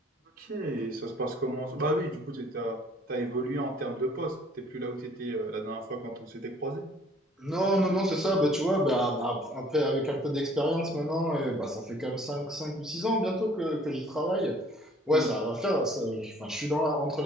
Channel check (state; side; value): normal; both; correlation 0.57